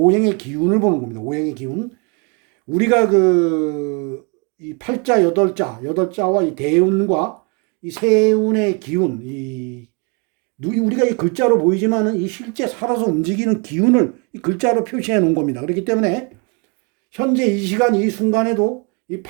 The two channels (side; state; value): left; quieter; 32.3 dB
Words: 기운을 보는 겁니다. 오행의 기운. 우리가 이 팔자 8자와 이 대운과 이 세운의 기운, 우리가 이 글자로 보이지만은 이 실제 살아서 움직이는 기운을 이 글자로 표시해 놓은 겁니다. 그렇기 때문에 현재 이 시간 이 순간에도 이